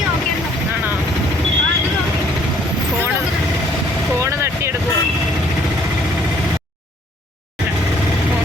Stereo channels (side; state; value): both; normal; correlation 0.62